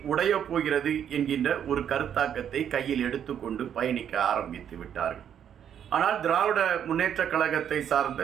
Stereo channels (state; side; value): quieter; left; 9.1 dB